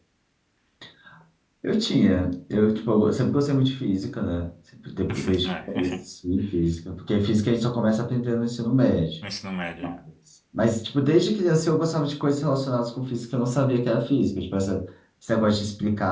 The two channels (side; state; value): both; identical; correlation 1.00